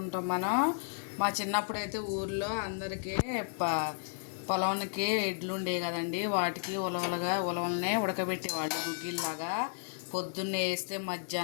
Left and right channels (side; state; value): right; silent; digital silence